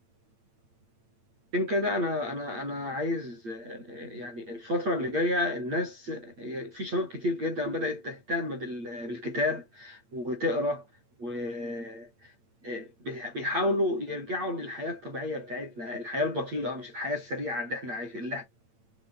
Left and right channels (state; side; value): late; left; 8.8 ms